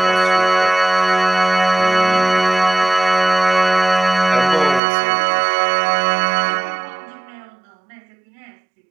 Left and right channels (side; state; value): left; drops out; at 4.8 s